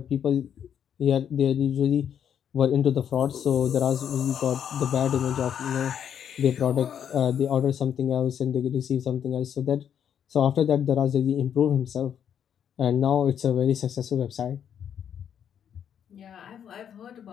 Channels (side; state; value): right; quieter; 8.8 dB